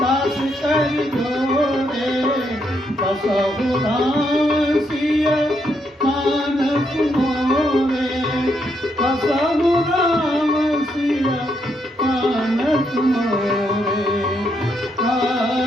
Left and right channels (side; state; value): both; normal; correlation 0.77